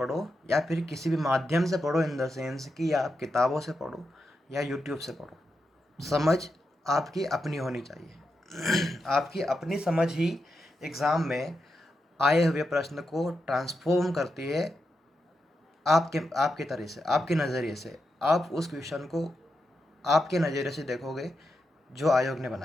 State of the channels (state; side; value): normal; both; correlation 0.86